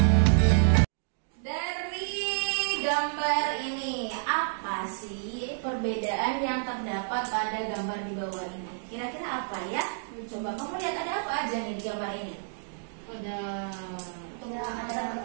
Gambar ini apa sih perbedaan yang terdapat pada gambar di bawah ini? Kira-kira apa ya? Coba kamu lihat ada apa aja nih di gambar ini? Ada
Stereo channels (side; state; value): left; silent; digital silence